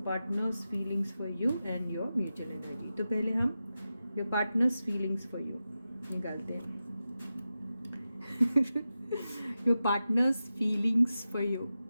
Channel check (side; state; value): both; inverted; correlation -0.92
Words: partner's feelings for you and your mutual energy. तो पहले हम your partner's feelings for you निकालते हैं। Your partner's feelings for you,